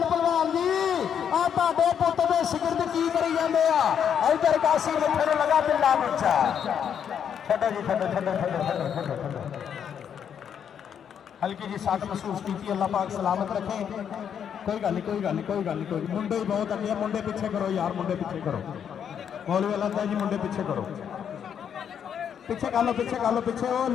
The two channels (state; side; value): quieter; right; 8.2 dB